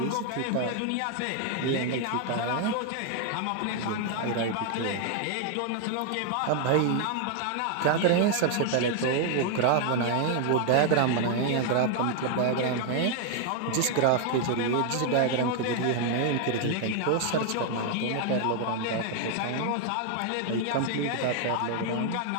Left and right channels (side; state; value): both; different; correlation 0.00